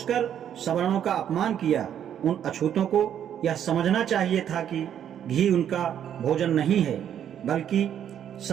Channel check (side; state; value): left; quieter; 9.6 dB